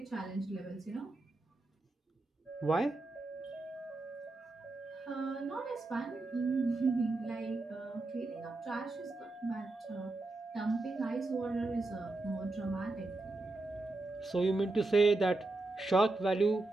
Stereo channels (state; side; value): quieter; left; 3.1 dB